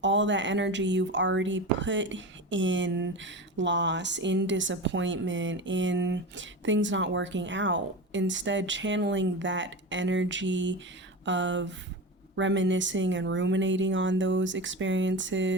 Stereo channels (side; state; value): both; normal; correlation 0.26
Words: all that energy you've already put in loss, in disappointment, in things not working out, instead channeling that energy of reminiscing and ruminating on those